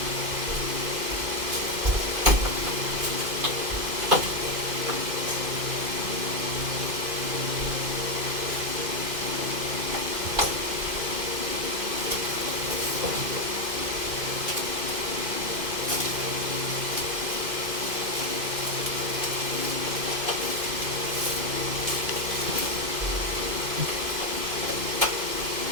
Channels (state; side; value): late; left; 2.5 ms